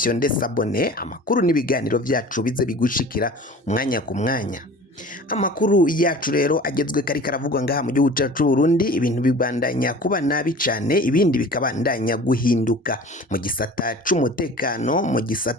sabone amakuru n'ibiganiro vyacu bize bigushikira umwanya ku mwanya. Amakuru yacu rero agezwe kari karavugwa ngaha mu gihugu cacu Burundi ibintu bibandanya kuba nabi cane ibindi bikabandanya guhinduka mu gisata c'umutekano mu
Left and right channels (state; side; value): normal; both; correlation 0.42